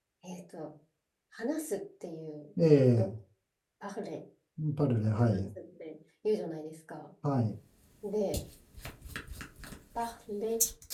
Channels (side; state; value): both; identical; correlation 1.00